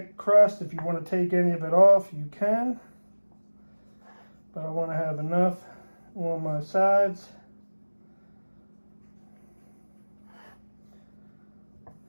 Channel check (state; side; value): inverted; both; correlation -1.00